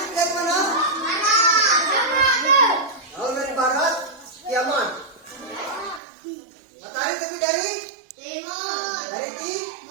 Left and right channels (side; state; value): left; drops out; at 6.0 s